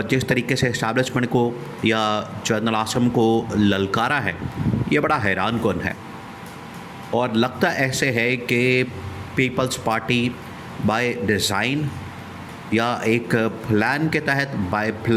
जिस तरीके से इस्टेब्लिशमेंट को या जनरल आसम को ललकारा है, ये बड़ा हैरान कुन है। और लगता ऐसे है कि पीपल्स पार्टी बाय डिज़ाइन या एक प्लान के तहत बाय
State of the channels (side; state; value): both; identical; correlation 1.00